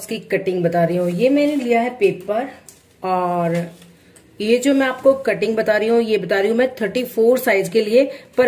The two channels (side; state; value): both; identical; correlation 1.00